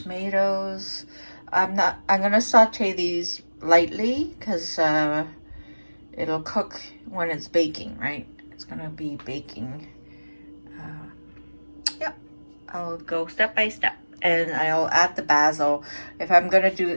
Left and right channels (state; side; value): inverted; both; correlation -1.00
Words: I'm gonna saute these lightly because it'll cook when it's baking, right? It's gonna be baking. Yep, I'll go step by step, and I'll add the basil. If I'm gonna do